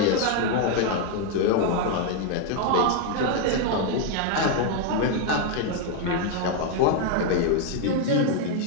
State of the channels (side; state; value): both; different; correlation 0.01